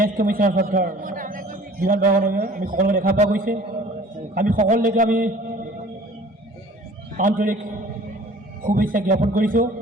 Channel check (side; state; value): both; normal; correlation 0.49